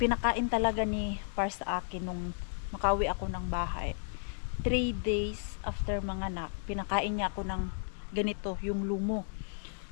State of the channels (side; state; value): right; silent; digital silence